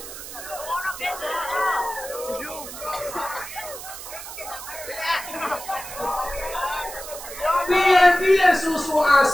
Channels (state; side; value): noise; right; hiss, 11 dB below the sound